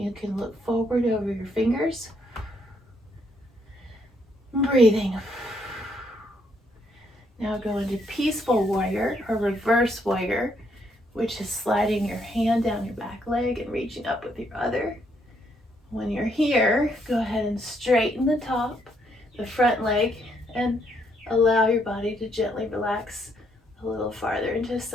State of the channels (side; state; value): both; normal; correlation 0.72